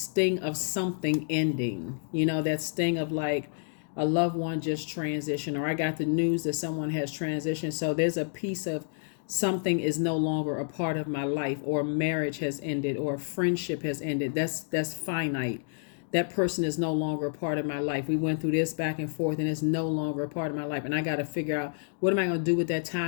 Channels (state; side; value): silent; right; digital silence